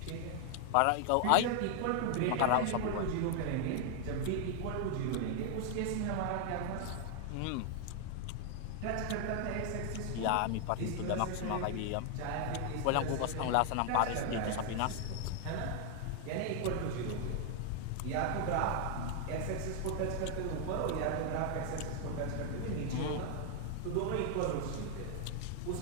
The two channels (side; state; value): both; different; correlation 0.00